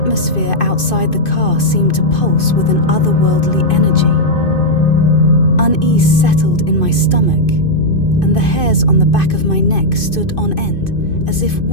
outside the car seemed to pulse with an otherworldly energy. Unease settled in my stomach, and the hairs on the back of my neck stood on end, as if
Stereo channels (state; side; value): late; right; 2.5 ms